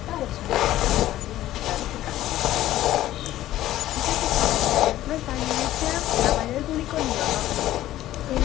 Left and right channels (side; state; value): right; quieter; 14.2 dB